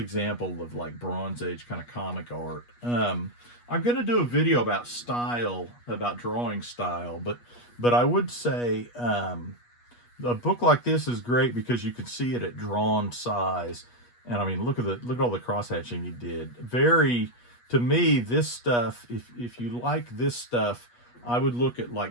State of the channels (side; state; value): right; late; 8.3 ms